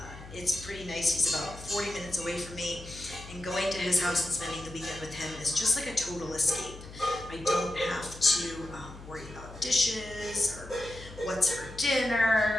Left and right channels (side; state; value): left; noise; hum, 15 dB below the sound